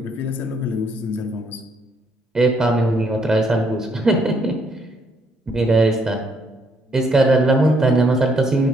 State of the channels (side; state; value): both; normal; correlation 0.71